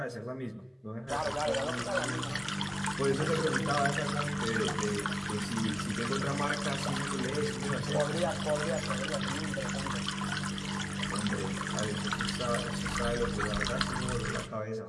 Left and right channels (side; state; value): both; identical; correlation 1.00